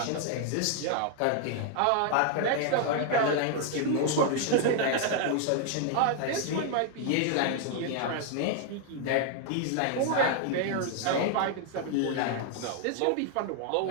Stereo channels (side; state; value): both; different; correlation 0.00